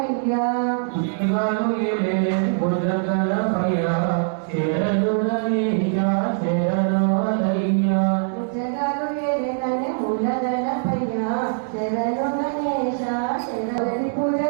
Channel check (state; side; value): silent; left; digital silence